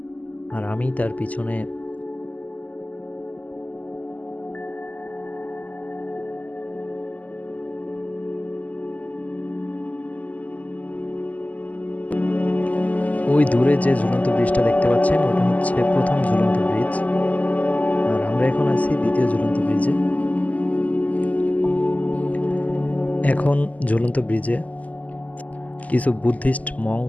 আর আমি তার পিছনে। ওই দূরে যে ঝুলন্ত ব্রিজটা দেখতে পাচ্ছেন ওটা হচ্ছে প্রথম ঝুলন্ত ব্রিজ, আর আমরা এখন আছি দ্বিতীয় ঝুলন্ত ব্রিজে। এখন ঝুলন্ত ব্রিজে কিছু বুদ্ধিস্ট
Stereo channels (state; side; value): late; right; 0.075 ms